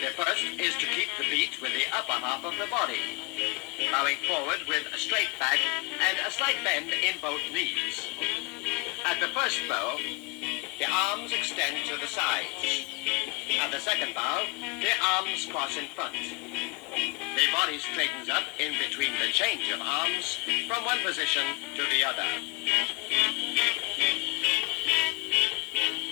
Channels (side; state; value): right; quieter; 25.7 dB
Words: first is to keep the beat with the upper half of the body, bowing forward with a straight back and a slight bend in both knees. At the first bow, the arms extend to the sides. At the second bow, the arms cross in front. The body straightens up in between the change of arms from one position to the other.